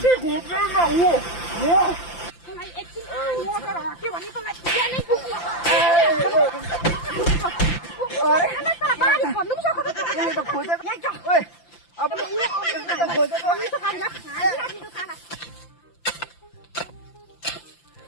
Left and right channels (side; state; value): right; late; 5.8 ms